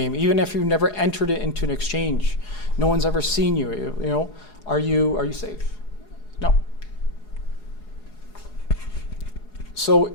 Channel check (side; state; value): right; late; 4.8 ms